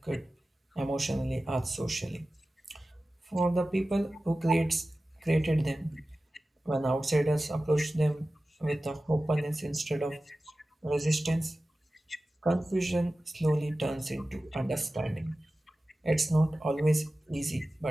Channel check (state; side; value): normal; both; correlation 0.95